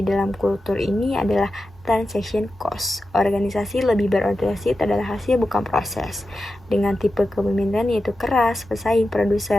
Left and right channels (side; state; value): both; normal; correlation 0.91